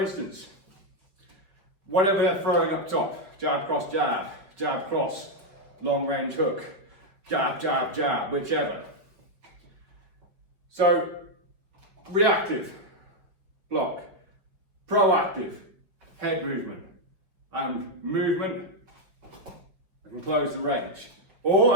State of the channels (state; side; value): late; left; 5.5 ms